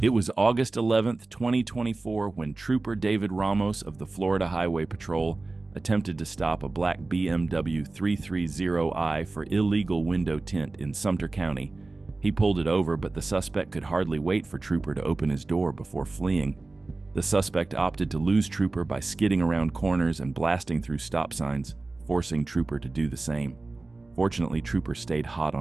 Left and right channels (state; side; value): quieter; left; 3.3 dB